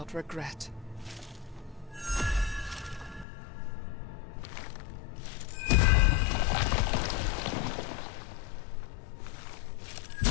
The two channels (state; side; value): drops out; right; at 3.2 s